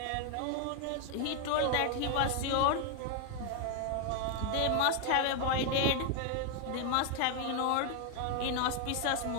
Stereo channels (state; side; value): different; both; correlation 0.00